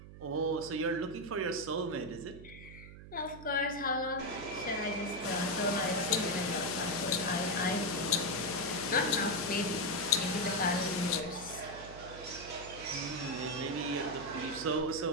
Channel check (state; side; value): noise; right; hum, 15 dB below the sound